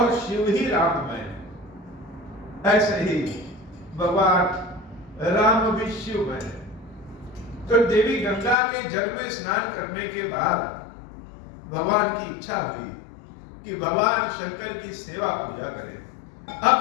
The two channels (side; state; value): right; drops out; at 8.6 s